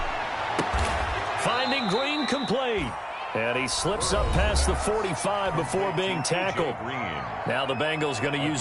Finding Green complete. And he slips up past the 45 before being tackled. Now the Bengals going to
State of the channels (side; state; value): both; identical; correlation 1.00